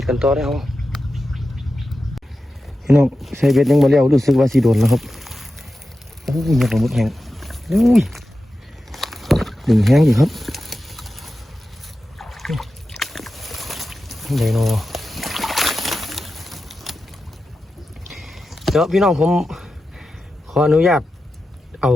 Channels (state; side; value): normal; both; correlation 0.92